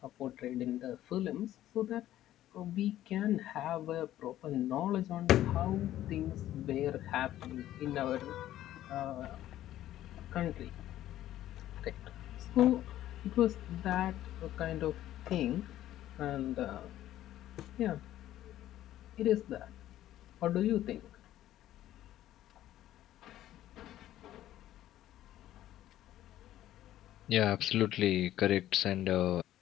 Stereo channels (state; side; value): quieter; right; 13.2 dB